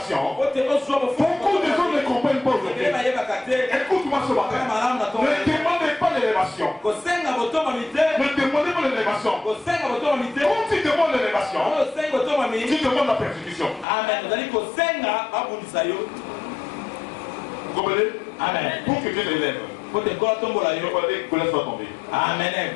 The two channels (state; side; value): drops out; right; at 13.9 s